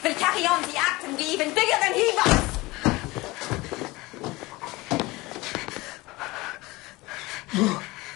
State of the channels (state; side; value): quieter; right; 21.4 dB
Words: We'll carry on the act and be even bigger than he was.